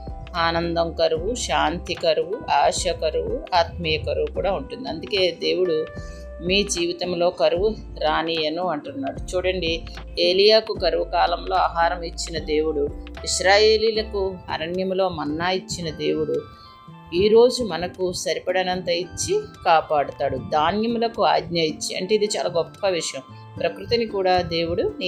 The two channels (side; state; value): both; identical; correlation 1.00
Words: ఆనందం కరువు, శాంతి కరువు, ఆశ కరువు, ఆత్మీయ కరువు కూడా ఉంటుంది. అందుకే దేవుడు మీ జీవితంలో కరువు రానియను అంటున్నాడు. చూడండి, ఏలియాకు కరువు కాలంలో ఆహారం ఇచ్చిన దేవుడు, ఇశ్రాయేలీలకు అరణ్యములో మన్నా ఇచ్చిన దేవుడు ఈరోజు మనకు సరిపడనంత ఇచ్చి కాపాడుతాడు. ధాన్యములకు ఆజ్ఞ ఇచ్చి, అంటే ఇది చాలా గొప్ప విషయం. ప్రకృతిని కూడా దేవుడు